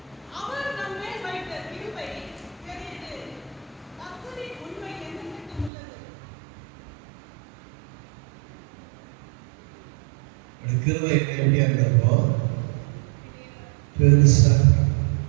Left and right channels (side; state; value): left; drops out; at 5.7 s